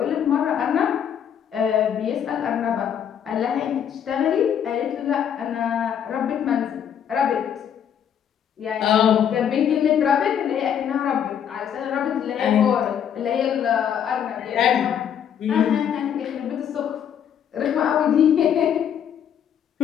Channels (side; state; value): right; quieter; 8.8 dB